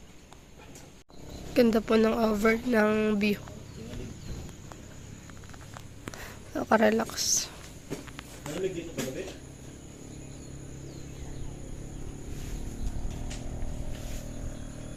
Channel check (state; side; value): identical; both; correlation 1.00